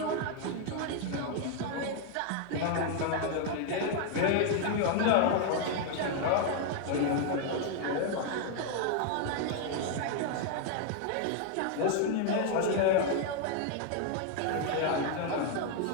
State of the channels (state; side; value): different; both; correlation 0.00